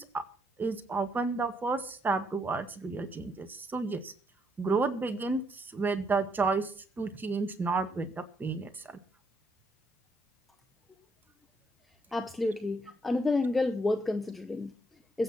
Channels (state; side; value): normal; both; correlation 0.74